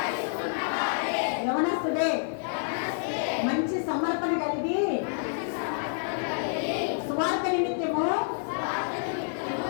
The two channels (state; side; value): silent; right; digital silence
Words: యవనస్తుడే, మంచి సమర్పణ కలిగి సువార్త నిమిత్తము